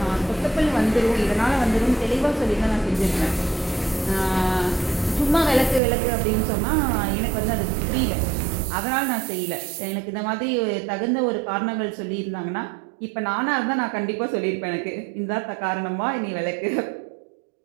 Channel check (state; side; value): drops out; left; at 5.8 s